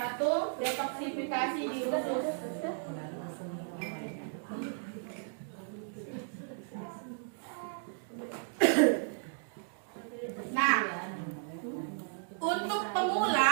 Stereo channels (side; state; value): left; silent; digital silence